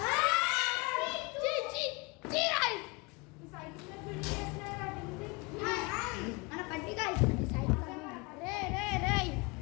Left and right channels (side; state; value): right; quieter; 27.5 dB